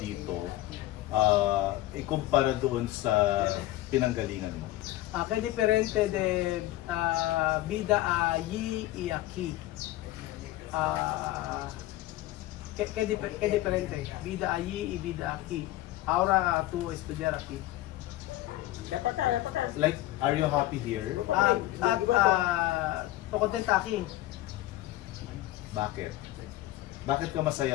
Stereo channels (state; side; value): quieter; right; 16.2 dB